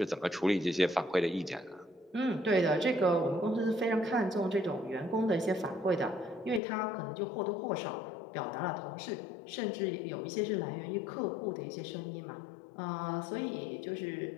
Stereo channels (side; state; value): right; drops out; at 6.6 s